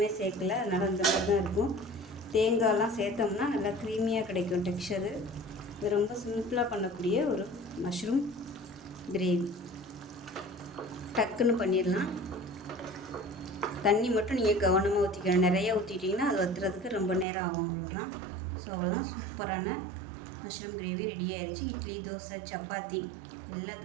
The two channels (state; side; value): drops out; left; at 17.2 s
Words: சேர்க்கல, அதனால் அந்த மாதிரி தான் இருக்கும். தேங்காயெலாம் சேர்த்தோம்னா நல்லா க்ரீமியாக கிடைக்கும் டெக்ஸ்சரு. இது ரொம்ப சிம்பிளாக பண்ணக்கூடிய ஒரு மஷ்ரூம் கிரேவி. டக்குன்னு பண்ணிடலாம். தண்ணி மட்டும் நீங்கள் கவனமாக ஊற்றிக்கணும். நிறையா ஊற்றிட்டிங்கன்னா அது வத்துறதுக்கு ரொம்ப நேரம் ஆகும். அவ்வளோதான். ஸோ அவ்வளோதான், சூப்பரான மஷ்ரூம் கிரேவி ரெடி ஆயிடுச்சு. இட்லி, தோசை, சப்பாத்தி